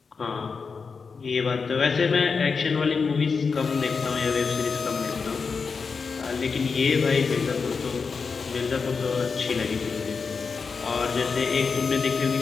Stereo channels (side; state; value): right; quieter; 5.1 dB